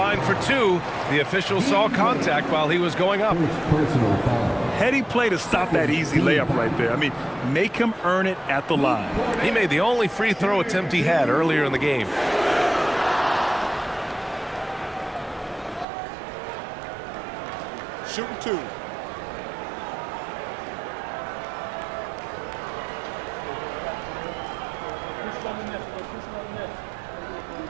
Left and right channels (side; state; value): left; drops out; at 15.9 s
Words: for 2. The official saw contact while he was going up. Heady play to stop that easy layup right there. I mean, make him earn it at the line. He made the only free throw attempt he had earlier in the game. Shooting 2.